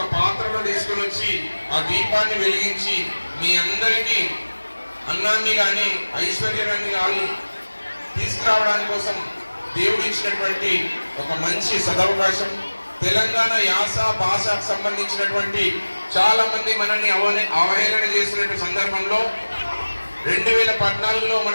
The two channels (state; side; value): inverted; both; correlation -1.00